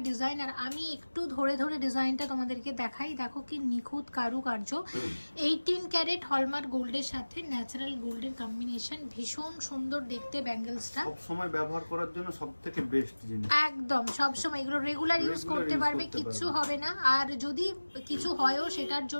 ডিজাইন। আর আমি একটু ধরে ধরে ডিজাইনটা তোমাদেরকে দেখাই, দেখো কি নিখুঁত কারুকার্য, 18 ক্যারেট হলমার্ক গোল্ডের সাথে ন্যাচারাল গোল্ডের কম্বিনেশন, ভীষণ সুন্দর দেখতে ব্যাঙ্গেলসটা। সব সময় ব্যবহার করার জন্য সবথেকে বেস্ট জিনিস, একদম সব সময় এগুলো রেগুলার ইউজ করতে পারবে, কিচ্ছু হবে না। আর যদি কিছু হয়ও সেটার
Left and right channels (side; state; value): both; inverted; correlation -1.00